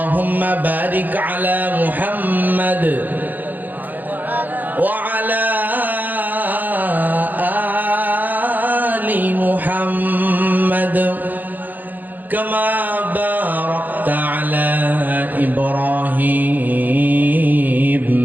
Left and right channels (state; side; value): late; left; 0.085 ms